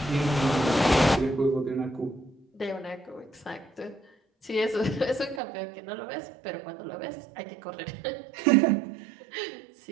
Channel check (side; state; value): left; drops out; at 5.4 s